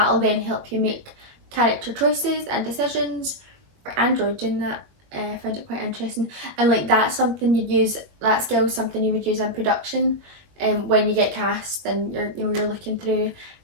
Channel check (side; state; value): left; late; 22 ms